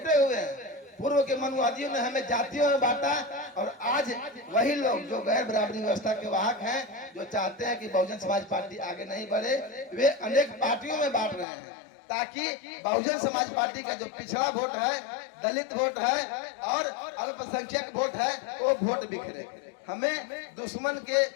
हुए हैं। पूर्व के मनुवादियों ने हमें जातियों में बांटा, और आज वही लोग जो गैर बराबरी व्यवस्था के वाहक हैं, जो चाहते हैं कि बहुजन समाज पार्टी आगे नहीं बढ़े, वे अनेक पार्टियों में बांट रहे हैं, ताकि बहुजन समाज पार्टी का जो पिछड़ा वोट है, दलित वोट है और अल्पसंख्यक वोट है, वो वोट बिखरे। हमें दुश्मन के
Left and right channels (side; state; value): right; drops out; at 11.5 s